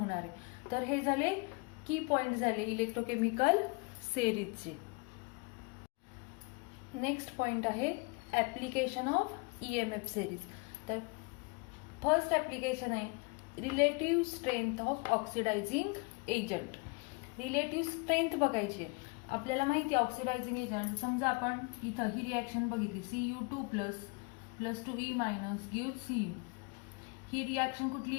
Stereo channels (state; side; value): quieter; right; 30.6 dB